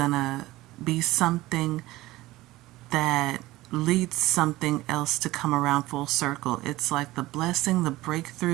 be something that leads something else to come around full circle. It's like the blessing, the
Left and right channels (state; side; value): quieter; left; 18.1 dB